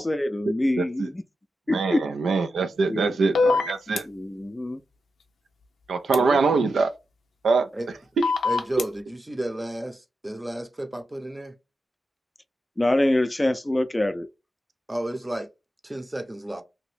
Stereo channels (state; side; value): normal; both; correlation 0.89